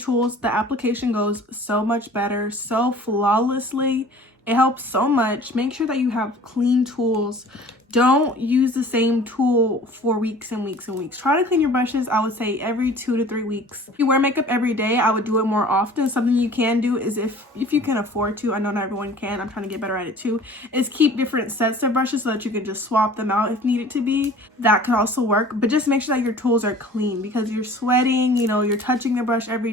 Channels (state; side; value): normal; both; correlation 0.46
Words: the application goes so much better, so flawlessly. It helps so much. Make sure that you have clean tools. Don't use the same tool for weeks and weeks and weeks. Try to clean your brushes, I would say, every 2 to 3 weeks. If you wear makeup every day, I would do it more often. Something you can do is if you can afford to, I know not everyone can, I'm trying to get better at it too, is keep different sets of brushes so that you can just swap them out if needed to be. That could also work, but just make sure that your tools are clean because you're sweating, you know, you're touching the brush every